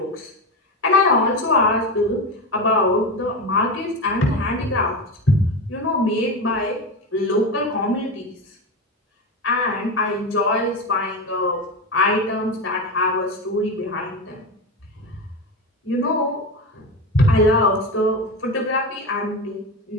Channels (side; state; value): both; normal; correlation 0.20